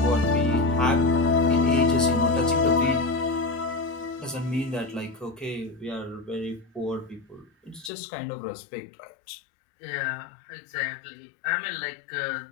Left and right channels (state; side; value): drops out; right; at 7.9 s